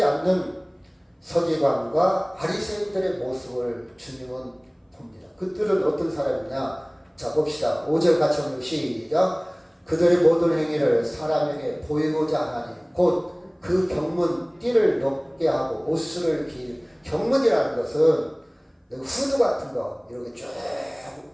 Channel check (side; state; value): both; identical; correlation 1.00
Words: 않는 서기관과 바리새인들의 모습을 주님은 봅니다. 그들은 어떤 사람이냐? 자, 봅시다. 5절 같이 한번 시작. 그들의 모든 행위를 사람에게 보이고자 하나니 곧 그 경문 띠를 높게 하고 옷을 경문이라는 것은 후드 같은 거 이렇게 쭉